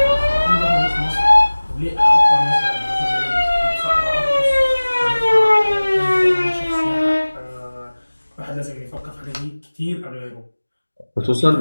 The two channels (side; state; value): both; inverted; correlation -1.00